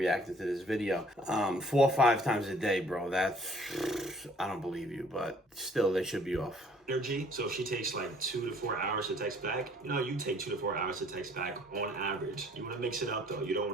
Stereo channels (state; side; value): normal; both; correlation 0.58